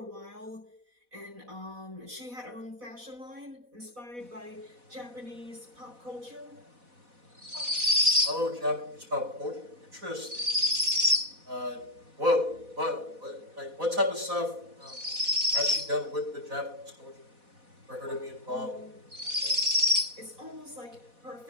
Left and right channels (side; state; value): left; late; 4.1 ms